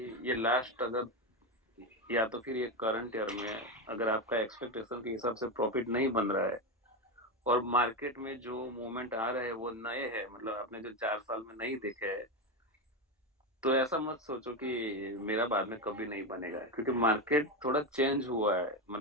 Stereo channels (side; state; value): both; normal; correlation 0.13